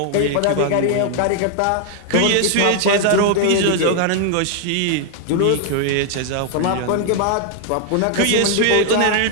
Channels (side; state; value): both; different; correlation 0.00